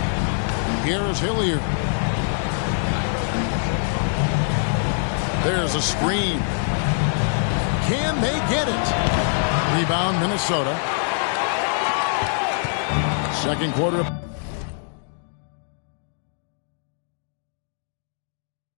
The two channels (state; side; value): silent; right; digital silence